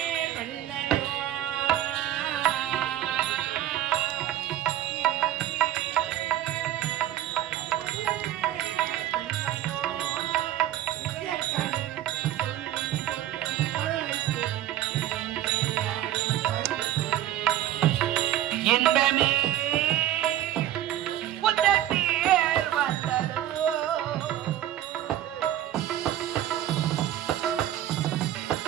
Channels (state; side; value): quieter; left; 12.5 dB